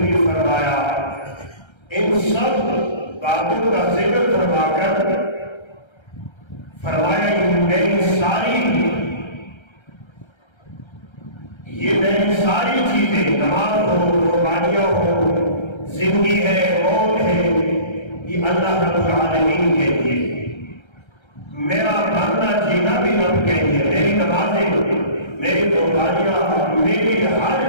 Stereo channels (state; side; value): late; right; 1.3 ms